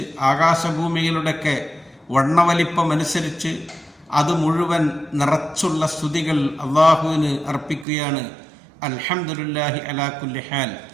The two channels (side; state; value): left; drops out; at 7.9 s